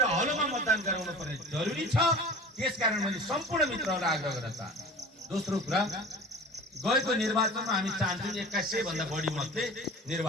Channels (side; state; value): both; normal; correlation 0.39